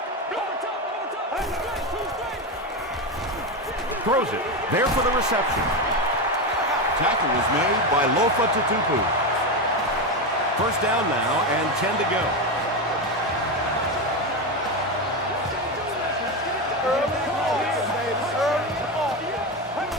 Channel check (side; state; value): both; normal; correlation 0.14